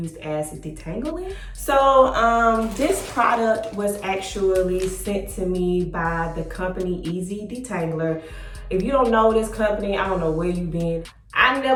as detangling. So this product was actually sent to me by the company Easy Detangler. If you don't know this company, I don't know where you've been. I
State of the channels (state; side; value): identical; both; correlation 1.00